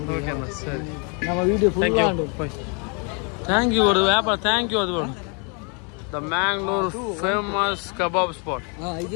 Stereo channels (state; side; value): quieter; right; 36.2 dB